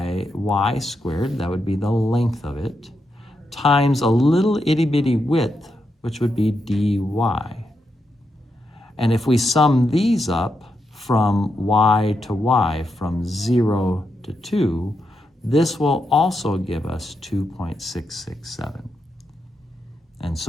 y squared, that would be the length of it, times a little itty bitty width, which would be dy. And if we sum these up from y to y, from 0 to 2, this will also give us 2.667. And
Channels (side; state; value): both; normal; correlation 0.84